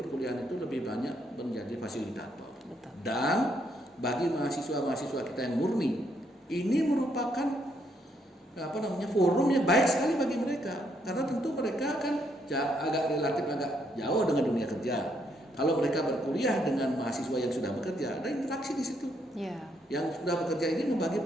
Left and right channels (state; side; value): normal; both; correlation 0.74